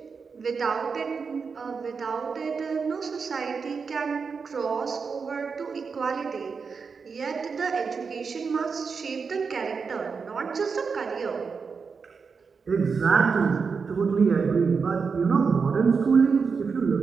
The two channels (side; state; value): left; quieter; 5.3 dB